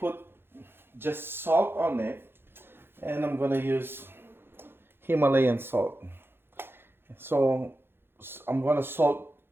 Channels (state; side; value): late; left; 0.11 ms